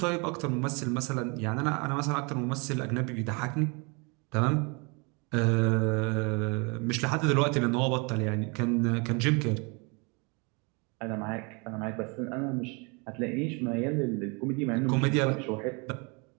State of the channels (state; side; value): quieter; left; 31.3 dB